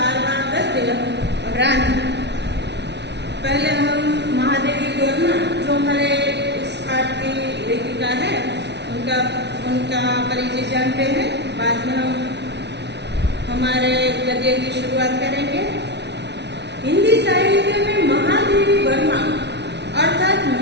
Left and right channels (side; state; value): left; late; 0.50 ms